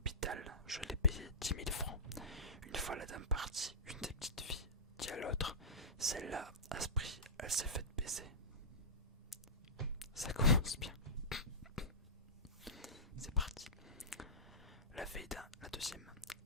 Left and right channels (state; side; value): normal; both; correlation -0.18